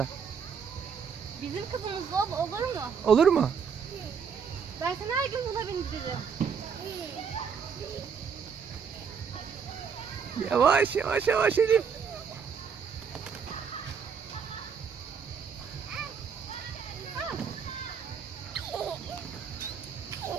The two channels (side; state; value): left; quieter; 6.5 dB